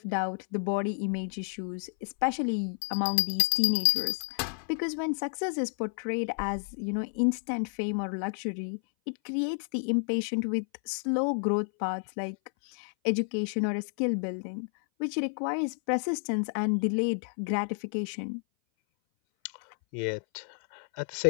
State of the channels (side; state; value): right; silent; 58 dB below the other